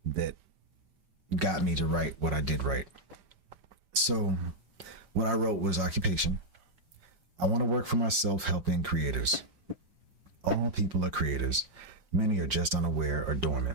that got me to write what I did write. So what I wrote was occupation. I want to work for myself helping creators. All people are creators. Many are just unaware or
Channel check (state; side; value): late; left; 5.1 ms